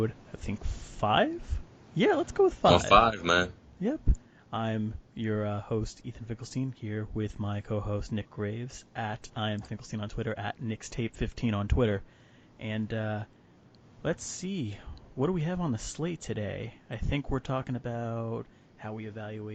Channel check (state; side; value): identical; both; correlation 1.00